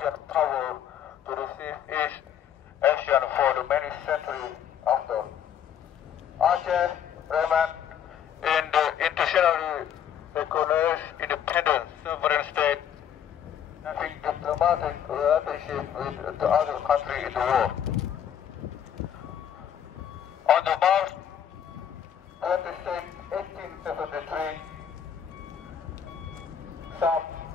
power to receive East Asian for the many centuries after, Aceh remained in the internationally recognized independent sovereign state, having diplomatic relationship with the other countries in the world. On the March 26, country some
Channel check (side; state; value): right; quieter; 9.1 dB